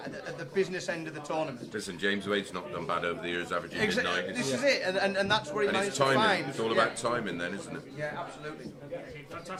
at the business end of the tournament. Listen, James Wade's not done bad over the years, averaging mid-90s. This is it, and that's where he And managed it's to timing. find. It's all about timing then, isn't it? Yeah, absolutely.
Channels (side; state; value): both; identical; correlation 1.00